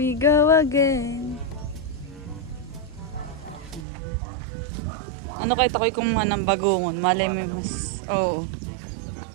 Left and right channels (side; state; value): left; drops out; at 3.9 s